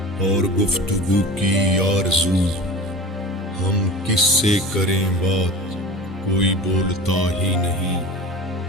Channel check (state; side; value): normal; both; correlation 0.35